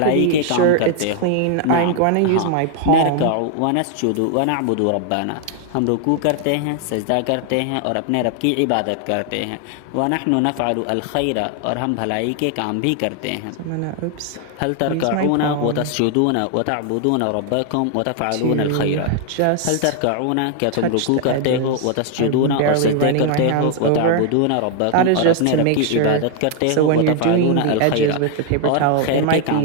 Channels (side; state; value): both; different; correlation 0.00